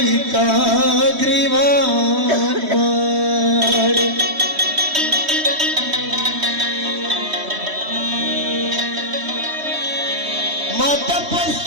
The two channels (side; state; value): left; late; 3.1 ms